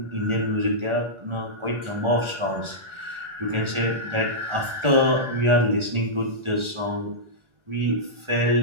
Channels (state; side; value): late; left; 1.4 ms